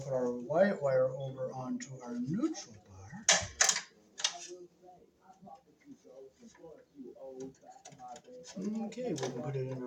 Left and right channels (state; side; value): identical; both; correlation 1.00